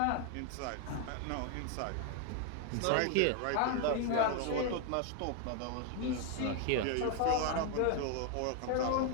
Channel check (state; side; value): different; both; correlation 0.00